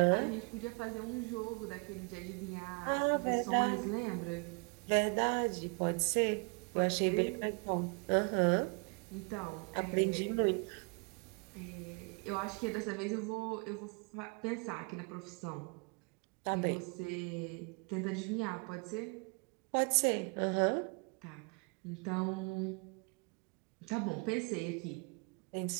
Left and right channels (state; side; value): quieter; left; 32.7 dB